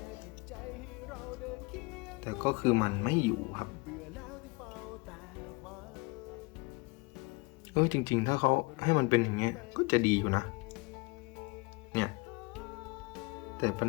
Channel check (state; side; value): quieter; right; 26.9 dB